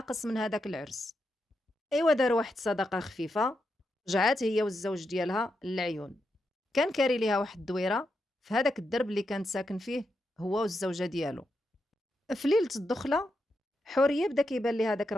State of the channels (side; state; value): both; normal; correlation 0.85